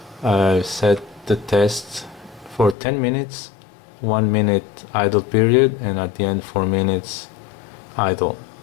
I set the test for 10 minutes, 1 minute idle period, and at the end 4 minutes idle.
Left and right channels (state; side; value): drops out; right; at 2.8 s